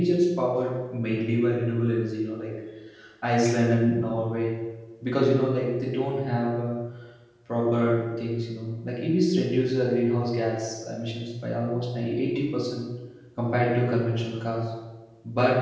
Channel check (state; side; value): identical; both; correlation 1.00